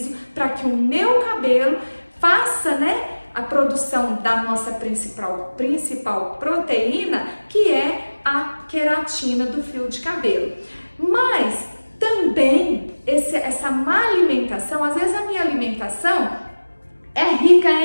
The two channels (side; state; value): both; inverted; correlation -1.00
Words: para que o meu cabelo faça, né, a produção da nossa principal proteína, que é a queratina do fio de cabelo. Mas também essa má alimentação, às vezes a minha alimentação é rica